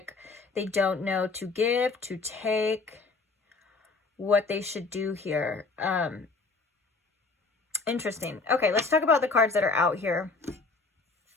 they don't know to give, to take, what they should do here. Interesting. Okay, let's talk about the cards that are out here.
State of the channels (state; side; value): quieter; right; 4.0 dB